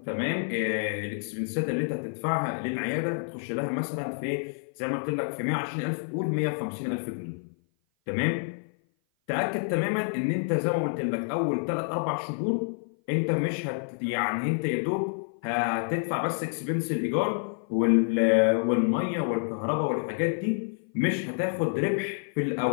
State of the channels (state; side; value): silent; right; 56 dB below the other